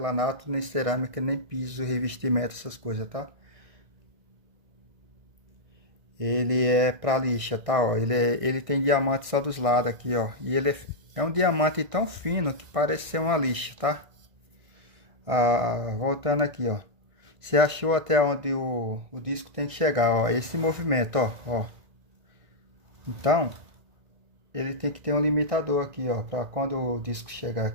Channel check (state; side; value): late; left; 1.6 ms